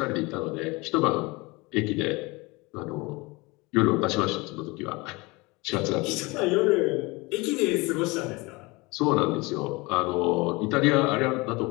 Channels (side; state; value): right; quieter; 24.6 dB